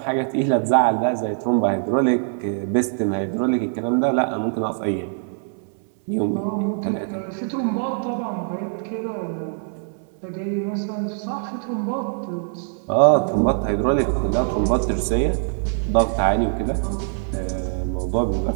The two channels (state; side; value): silent; left; 61 dB below the other